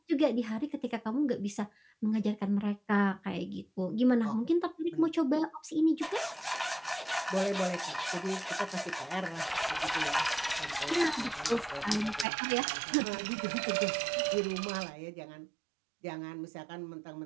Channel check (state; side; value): drops out; left; at 12.2 s